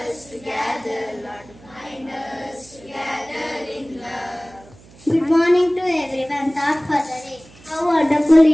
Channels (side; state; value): right; noise; hum, 24 dB below the sound